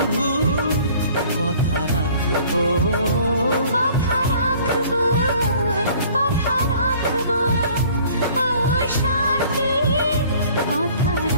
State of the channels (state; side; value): inverted; both; correlation -0.53